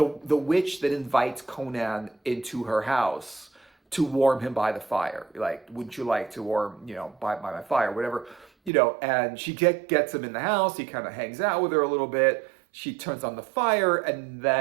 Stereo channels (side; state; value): left; drops out; at 8.7 s